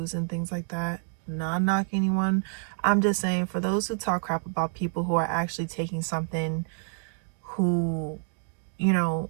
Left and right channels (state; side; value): silent; left; 56 dB below the other